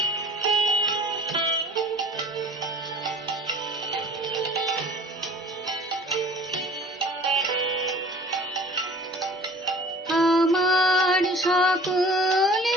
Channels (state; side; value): normal; both; correlation 0.48